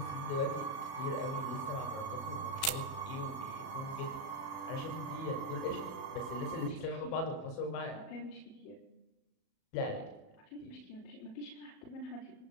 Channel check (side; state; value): right; late; 37 ms